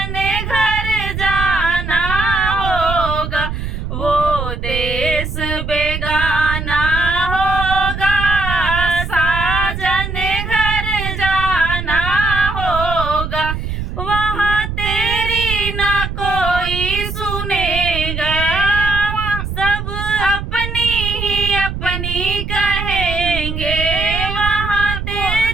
घर जाना होगा। वो देश बेगाना होगा, साजन घर जाना होगा। वहाँ तेरी ना कोई सुनेगा, सब अपनी ही अपनी कहेंगे। वहाँ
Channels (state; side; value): noise; right; rumble, 5 dB below the sound